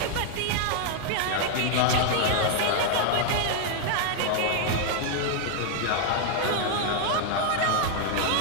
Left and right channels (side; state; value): both; different; correlation 0.00